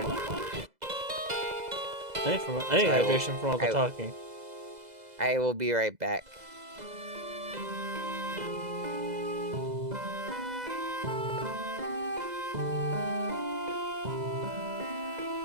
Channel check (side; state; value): left; late; 2.0 ms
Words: I need hydration from all the talking. I will be right back.